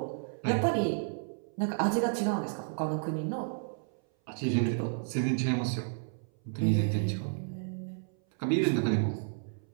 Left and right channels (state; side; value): silent; left; 57 dB below the other